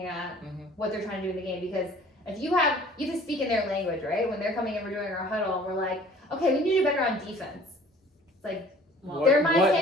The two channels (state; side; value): normal; both; correlation 0.51